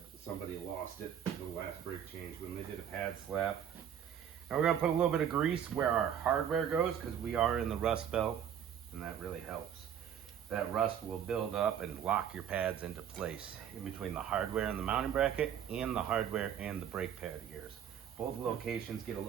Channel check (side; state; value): left; quieter; 9.0 dB